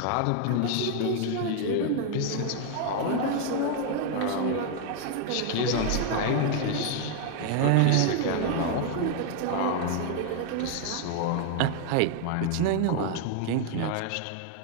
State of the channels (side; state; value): both; different; correlation 0.00